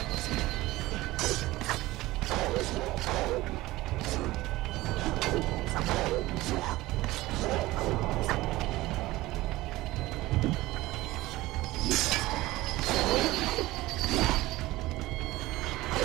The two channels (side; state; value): left; quieter; 18.3 dB